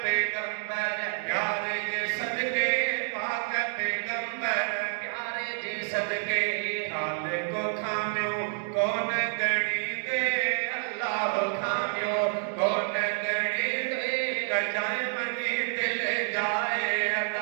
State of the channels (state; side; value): silent; left; 59 dB below the other